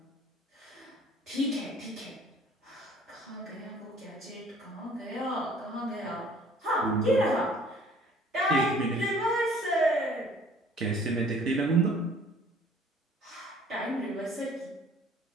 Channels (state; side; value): normal; both; correlation 0.54